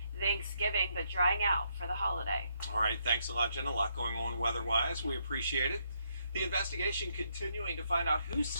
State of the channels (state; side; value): inverted; both; correlation -0.76